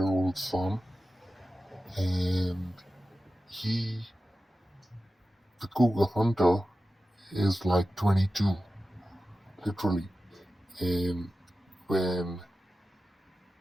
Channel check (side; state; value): both; normal; correlation 0.94